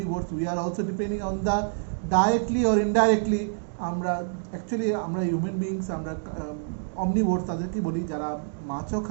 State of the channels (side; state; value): left; silent; digital silence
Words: we are also depending on the directly or indirectly আমরা অ্যাকচুয়ালি আমরা হিউম্যান বিংস আমরা অমনিভোরস তাদেরকে বলি যারা মাছও